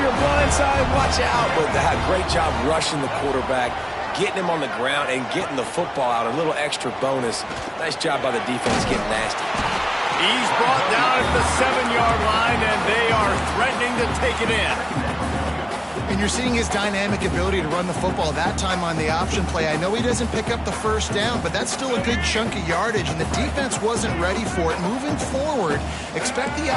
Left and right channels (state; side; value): identical; both; correlation 1.00